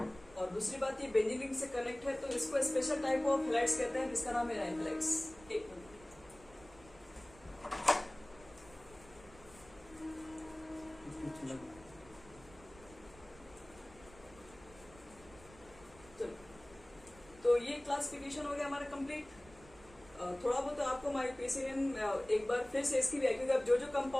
और दूसरी बात, ये बेंजीन रिंग से कनेक्ट है, तो इसको स्पेशल टाइप ऑफ हैलाइड्स कहते हैं, जिसका नाम है एराइल हैलाइड्स। एक मिनट, तो ये क्लासिफिकेशन हो गया हमारा कंप्लीट। थोड़ा बहुत तो आपको आईयूपीएसी नेम एक बार फिर से इसकी भी है, क्योंकि आप जो जो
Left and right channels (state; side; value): noise; right; rumble, 22 dB below the sound